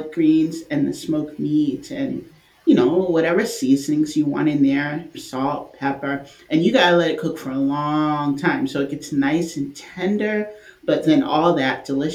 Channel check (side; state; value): both; identical; correlation 1.00